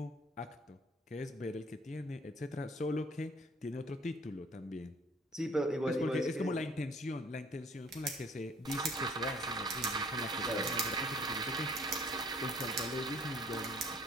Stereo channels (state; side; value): normal; both; correlation 0.56